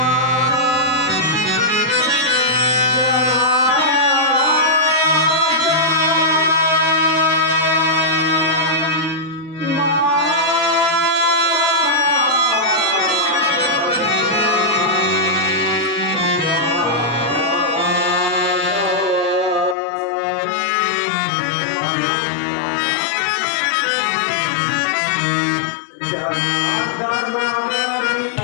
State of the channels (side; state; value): right; drops out; at 19.8 s